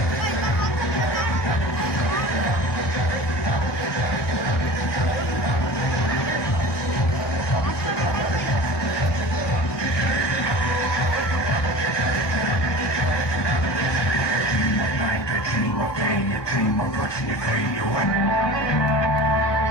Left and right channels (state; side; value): late; right; 1.2 ms